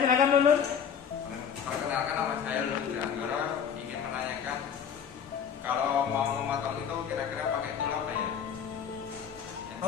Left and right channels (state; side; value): quieter; right; 7.6 dB